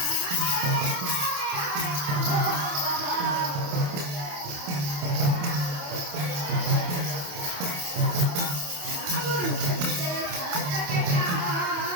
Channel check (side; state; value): left; late; 28 ms